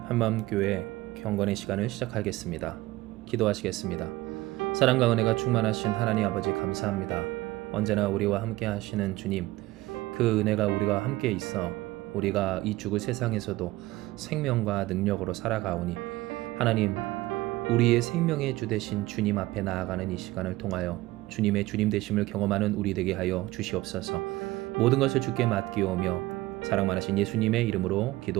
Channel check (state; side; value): quieter; left; 18.5 dB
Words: 한마음교회 경건의 시간을 시작하겠습니다. 기도하시겠습니다. 사랑과 은혜가 충만하신 하나님 아버지 감사합니다. 언제나 우리와 함께 하시는 주님, 그 은혜가 우리와 함께 있어 우리가 이 죽을 세상에서도 생명과 능력으로 살아가오니 하나님, 우리의 생명의 주 되신 주님 앞에 나아가는 이 시간을 통하여 주님의 주님 되심을 경험하는 우리 되게 하여 주시옵소서. 모든 것을 주께 맡기오며 사랑 많으신 예수님의 이름으로